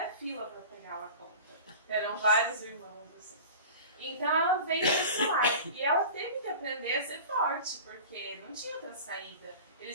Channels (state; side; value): inverted; both; correlation -0.37